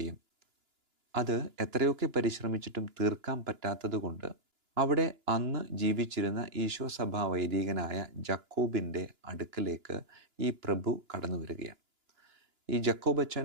അത് എത്രയൊക്കെ പരിശ്രമിച്ചിട്ടും തീർക്കാൻ പറ്റാത്തതുകൊണ്ട് അവിടെ അന്ന് ജീവിച്ചിരുന്ന ഈശോ സഭാ വൈദികനായ ജക്കോബിൻ്റെ അടുക്കലേക്ക് ഈ പ്രഭു കടന്നു വരികയാണ്. ഈ ജക്കോബച്ചൻ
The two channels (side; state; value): left; late; 2.9 ms